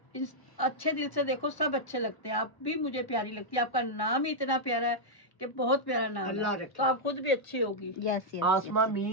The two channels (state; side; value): late; right; 1.1 ms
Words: इस अच्छे दिल से देखो, सब अच्छे लगते हैं। आप भी मुझे प्यारी लगती है, आपका नाम ही इतना प्यारा है कि बहुत प्यारा नाम अल्लाह है, रखे। तो आप खुद भी अच्छी होगी। Yes yes. Asma